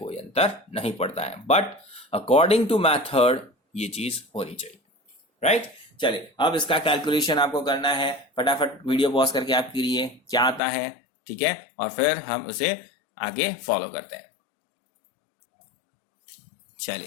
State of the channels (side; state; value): right; drops out; at 10.6 s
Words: अंतर नहीं पड़ता है, बट अकॉर्डिंग टू मैथड ये चीज होनी चाहिए, राइट। चलिए, अब इसका कैलकुलेशन आपको करना है। फटाफट वीडियो पॉज करके आप करिए क्या आता है, ठीक है, और फिर हम उसे आगे फॉलो करते हैं।